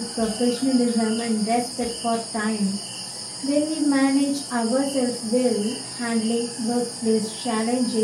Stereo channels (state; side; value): identical; both; correlation 1.00